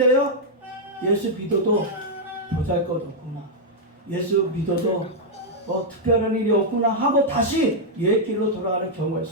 예수 믿어도 보잘것없구나. 예수 믿어도 특별한 일이 없구나 하고 다시 옛 길로 돌아가는 경우가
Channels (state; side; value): normal; both; correlation -0.05